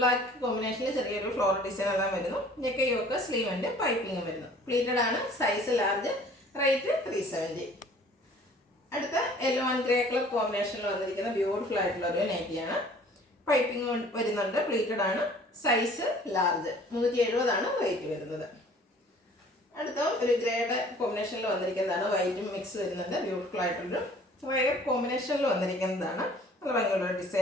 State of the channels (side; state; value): both; normal; correlation 0.52